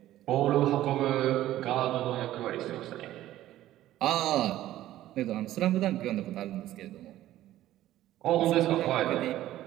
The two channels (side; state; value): left; quieter; 14.1 dB